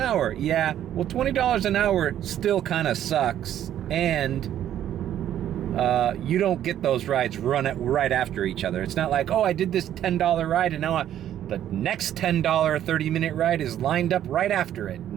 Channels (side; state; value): left; quieter; 11.1 dB